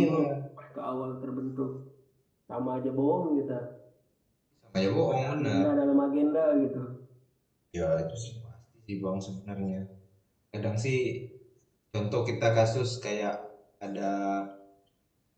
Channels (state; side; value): identical; both; correlation 1.00